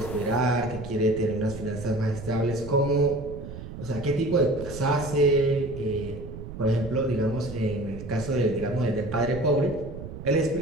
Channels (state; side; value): noise; right; rumble, 11 dB below the sound